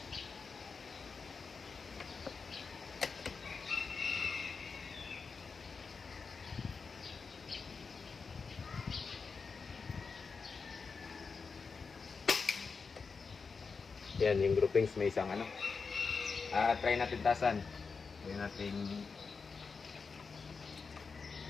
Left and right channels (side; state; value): right; quieter; 5.0 dB